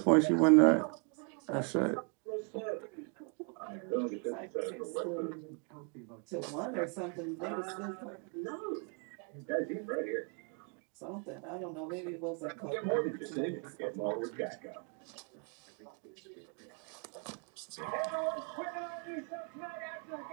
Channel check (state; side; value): quieter; left; 37.9 dB